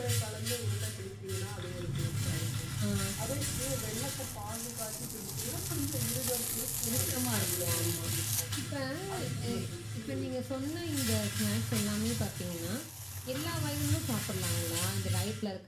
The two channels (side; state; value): both; identical; correlation 1.00